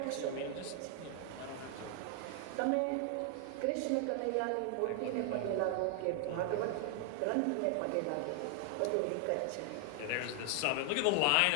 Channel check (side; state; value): both; different; correlation 0.00